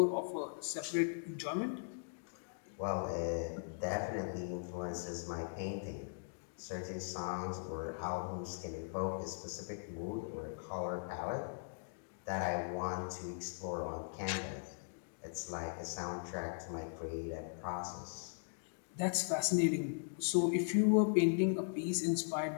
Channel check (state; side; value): silent; right; digital silence